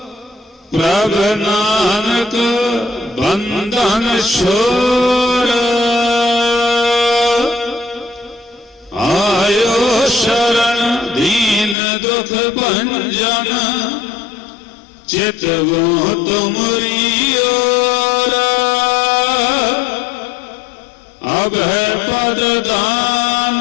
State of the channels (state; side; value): drops out; right; at 11.8 s